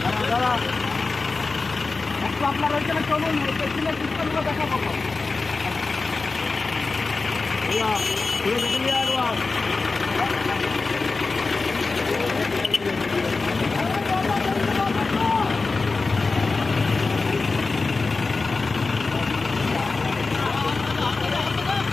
দাদা একটু আপনার ওইখানে চলুন, পেছনে পিস্তলগুলো দেখা পাবো। ঘুরে দেখে নিয়ে একবার।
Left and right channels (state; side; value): quieter; right; 3.9 dB